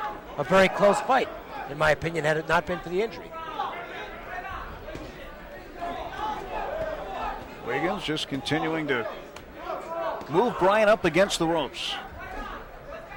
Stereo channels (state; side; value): identical; both; correlation 1.00